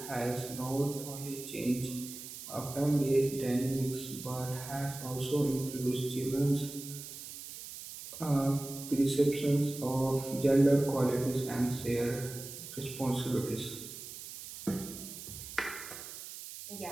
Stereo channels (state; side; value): noise; right; hiss, 11 dB below the sound